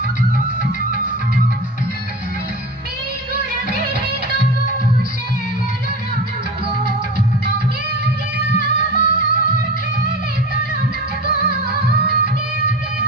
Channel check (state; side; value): normal; both; correlation 0.31